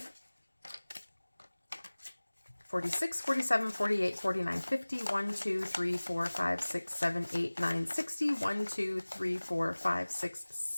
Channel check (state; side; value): inverted; both; correlation -1.00